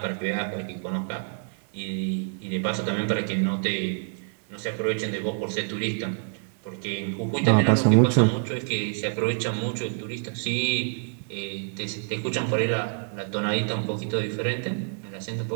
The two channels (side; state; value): left; silent; 60 dB below the other